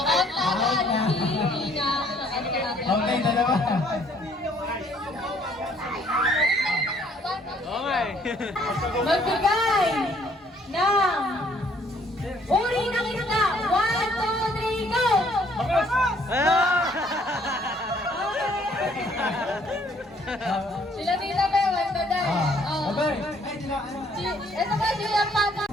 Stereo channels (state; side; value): normal; both; correlation 0.63